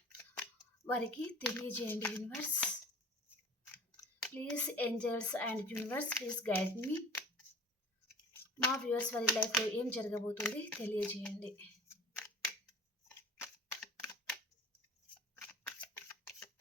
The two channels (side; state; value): both; normal; correlation 0.43